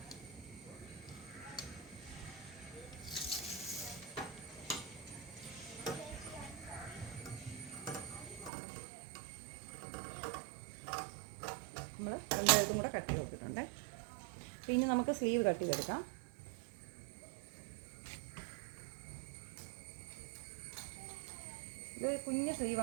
നമ്മൾ രണ്ട് എഴുത്തും കൂടെ കട്ട് ചെയ്ത് കൊടുത്തിട്ടുണ്ട്. പിന്നെ നമുക്ക് സ്ലീവ് കട്ട് ചെയ്തെടുക്കാം. ഇത് കുഞ്ഞ്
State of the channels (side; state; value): left; drops out; at 8.5 s